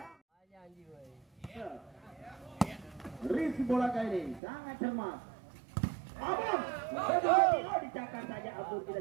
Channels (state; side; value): drops out; left; at 4.4 s